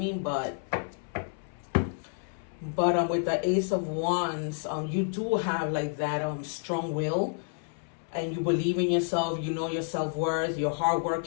but with the Ace of Wands, you do have like that strong will, and you believe in yourself, you know your self-worth, you're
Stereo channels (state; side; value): silent; right; 58 dB below the other